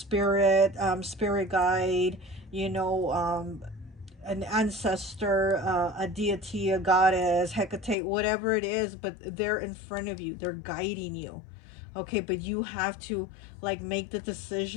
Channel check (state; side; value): drops out; right; at 8.0 s